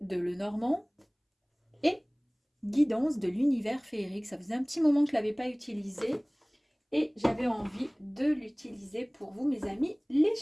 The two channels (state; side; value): identical; both; correlation 1.00